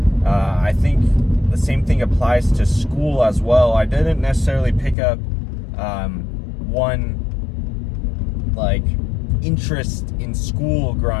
I think the same thing applies to school as well. I didn't necessarily pick up one like interest in school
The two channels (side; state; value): right; drops out; at 5.0 s